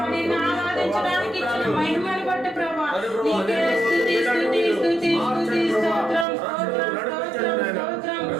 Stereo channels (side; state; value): left; drops out; at 6.2 s